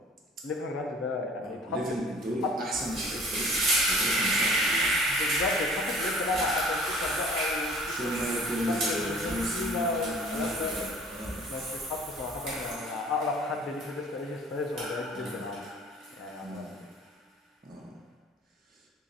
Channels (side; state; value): both; normal; correlation 0.50